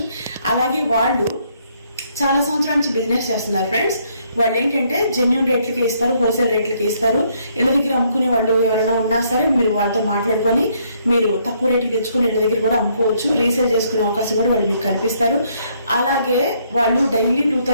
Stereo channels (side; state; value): both; inverted; correlation -0.70